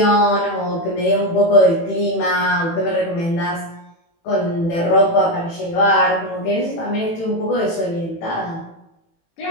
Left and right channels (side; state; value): right; late; 18 ms